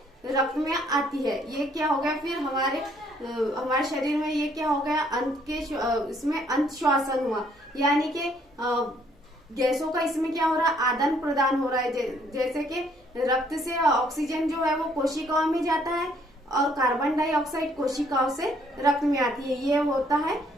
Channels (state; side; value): normal; both; correlation 0.65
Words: रक्त में आती है। ये क्या हो गया फिर हमारे शरीर में ये क्या हो गया, इसमें अंत श्वसन हुआ, यानी कि गैसों का इसमें क्या हो रहा है, आदान प्रदान हो रहा है। जैसे कि रक्त से ऑक्सीजन जो है वो कोशिकाओं में जाता है और कार्बन डाइऑक्साइड कोशिकाओं से रक्त में आती है। ये होता है